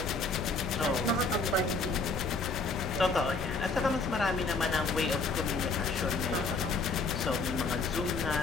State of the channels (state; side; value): quieter; right; 3.9 dB